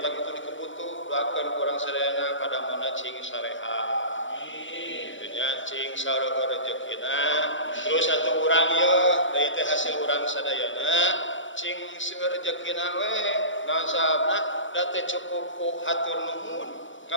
itu dikebutuh doakeun kurang sadayana pada mana cing sareha gitunya cing sareueur rezekina terus satu urang ye deui teh hasil urang sadayana cing seueur rezekina we naon sababna da teh cukup ku hatur nuhun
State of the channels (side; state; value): right; late; 0.56 ms